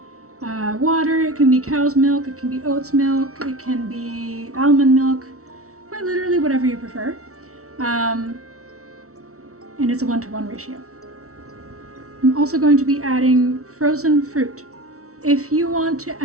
water, it can be cow's milk, it can be oat's milk, it can be almond milk, quite literally whatever you prefer. And it's a 1-to-1 ratio. I'm also going to be adding frozen fruit. If you want to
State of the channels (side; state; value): left; late; 0.64 ms